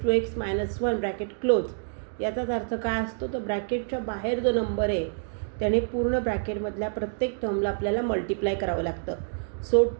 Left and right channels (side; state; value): left; silent; digital silence